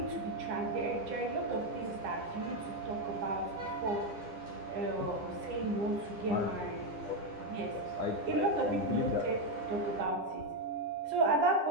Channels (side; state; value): left; late; 9.9 ms